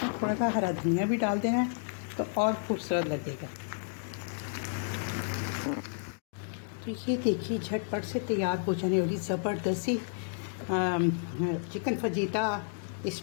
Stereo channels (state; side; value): silent; right; digital silence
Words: थोड़ा सा हरा धनिया भी डाल देना है तो और खूबसूरत लगेगा। तो ये देखिए झटपट से तैयार हो जाने वाली ज़बरदस्त ही chicken fajita